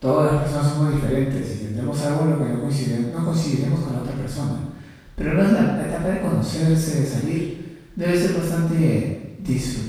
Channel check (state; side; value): identical; both; correlation 1.00